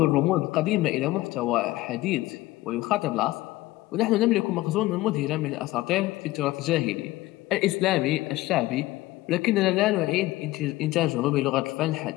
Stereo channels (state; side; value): quieter; right; 17.9 dB